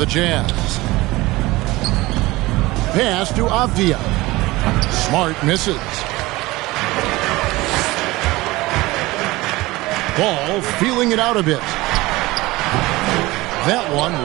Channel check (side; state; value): left; quieter; 20.1 dB